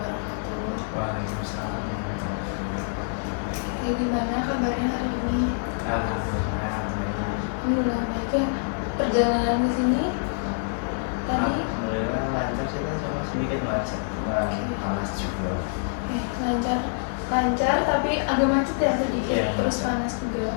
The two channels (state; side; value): silent; right; 56 dB below the other